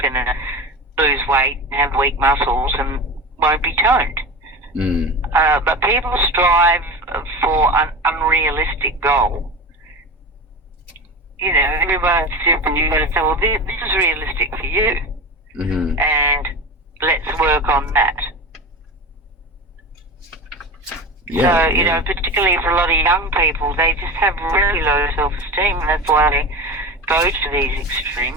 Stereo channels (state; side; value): normal; both; correlation 0.28